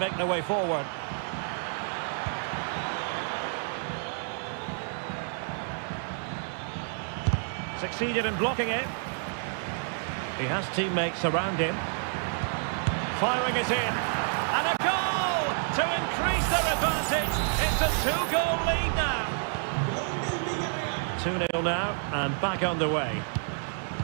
their way forward. Succeeded in blocking it. He has teammates around him. Firing it in. And a goal to increase their advantage. It's a 2-goal lead now. 2-0 now and back underway.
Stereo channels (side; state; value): left; silent; 58 dB below the other